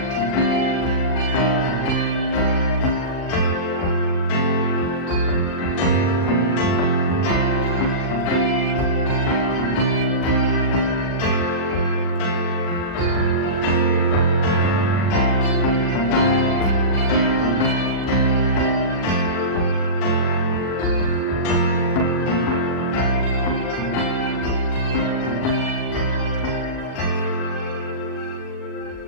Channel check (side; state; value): right; late; 40 ms